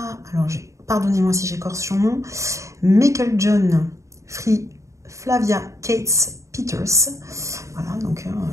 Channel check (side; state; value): left; late; 0.15 ms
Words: alors pardonnez-moi si j'écorche son nom, Meiklejohn Free Flavia Cates Peters. Voilà, donc